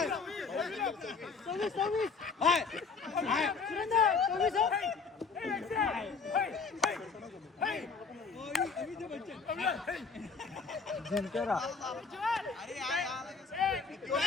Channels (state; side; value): quieter; right; 5.0 dB